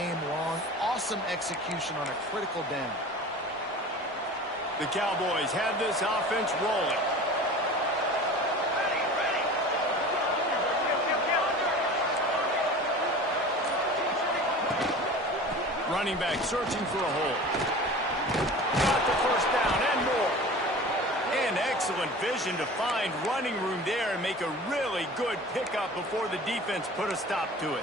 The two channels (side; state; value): both; normal; correlation 0.38